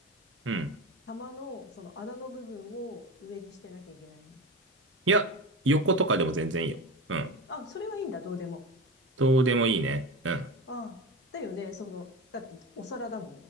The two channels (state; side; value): normal; both; correlation 0.25